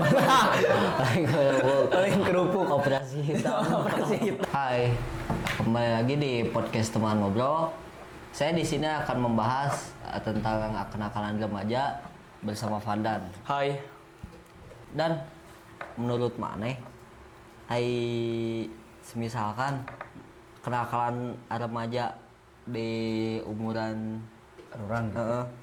Paling kerupuk. Operasi hitam. Hai, kembali lagi di podcast teman ngobrol. Saya di sini akan membahas tentang kenakalan remaja bersama Vandan. Hai. Dan menurut Maneh, semisalkan kenakalan remaja di umuran Orang gitu.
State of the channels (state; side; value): identical; both; correlation 1.00